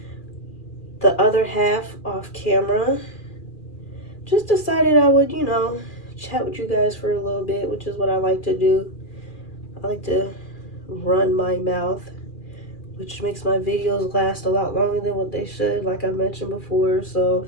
the other half off camera. Just decided I would, you know, chat with you guys for a little bit, which is what I like to do. I like to run my mouth, which makes my videos last a lot longer than what they should, like I mentioned before. So,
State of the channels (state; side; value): late; right; 2.4 ms